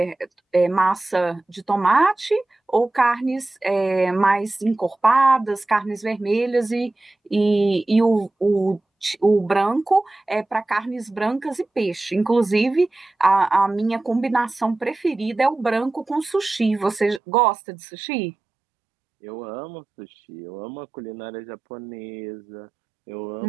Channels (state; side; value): drops out; left; at 17.2 s